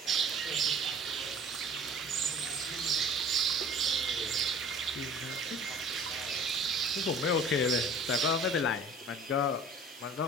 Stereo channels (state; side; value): normal; both; correlation 0.46